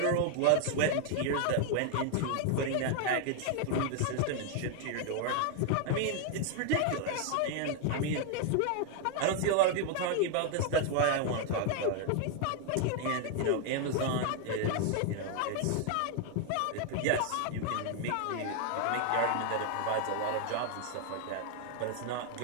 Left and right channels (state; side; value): different; both; correlation 0.00